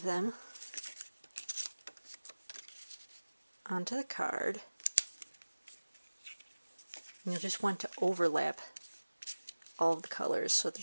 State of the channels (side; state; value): both; inverted; correlation -1.00